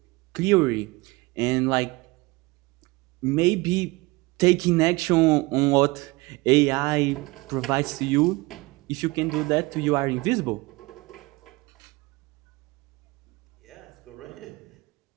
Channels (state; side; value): quieter; left; 23.2 dB